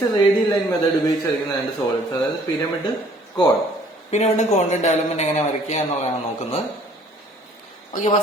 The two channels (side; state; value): both; normal; correlation 0.57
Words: റേഡിയൽ ലൈൻ മെത്തേഡ് ഉപയോഗിച്ച് വരയ്ക്കുന്ന രണ്ട് സോളിഡ്സ്, അതായത് പിരമിഡ് കോൺ. പിരമിഡ് കോണിന്റെ ഡെവലപ്മെന്റ് എങ്ങനെ വരയ്ക്കുക എന്നുള്ളതാണ് നോക്കുന്നത്. ഓക്കെ,